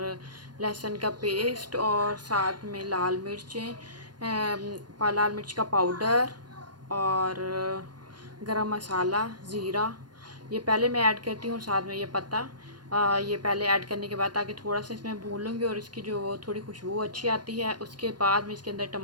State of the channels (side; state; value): left; late; 0.70 ms